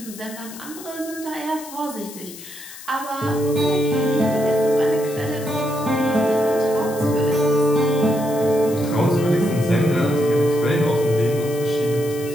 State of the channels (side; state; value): left; noise; hiss, 15 dB below the sound